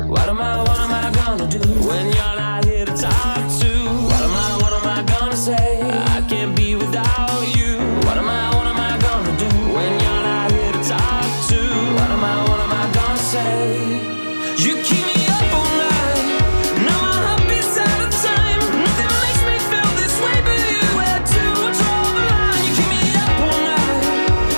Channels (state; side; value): inverted; both; correlation -1.00